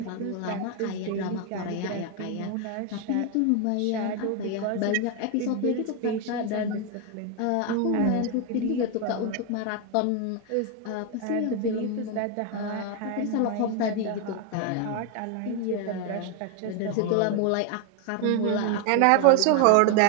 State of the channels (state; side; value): different; both; correlation 0.01